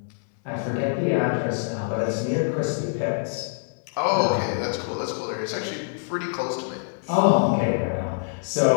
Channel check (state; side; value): silent; right; digital silence